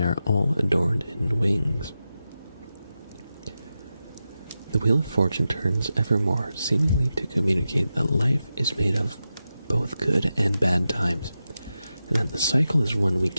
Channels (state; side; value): inverted; both; correlation -0.91